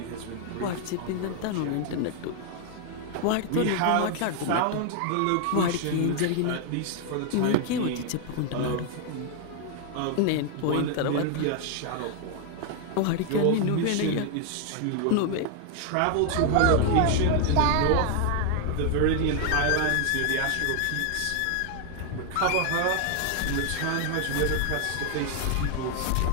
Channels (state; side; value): different; both; correlation 0.00